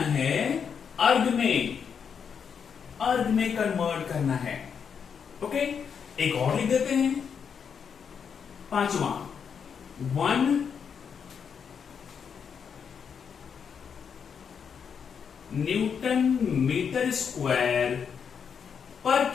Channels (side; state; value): right; quieter; 6.9 dB